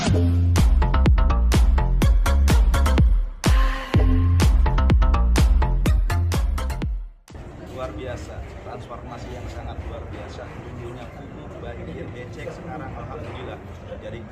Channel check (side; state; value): both; identical; correlation 1.00